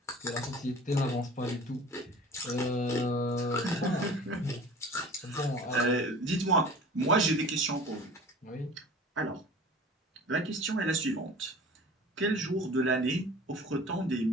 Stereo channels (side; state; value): both; normal; correlation 0.42